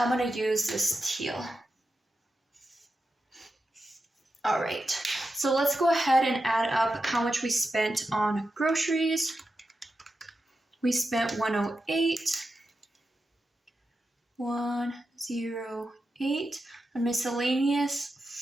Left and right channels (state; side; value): normal; both; correlation 0.89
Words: gonna use this teal. All right, so let's go ahead and add up how much we spent on groceries. We spent $108. 108 on